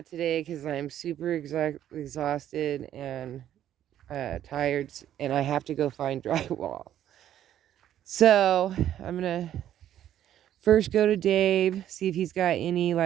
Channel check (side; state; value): left; quieter; 11.3 dB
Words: today because I'm super exhausted and tired, and I have to go find drywall. So I'm going to first go to Dave, see if he's got any